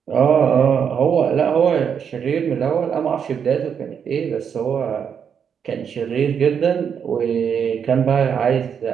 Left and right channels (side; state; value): left; quieter; 7.4 dB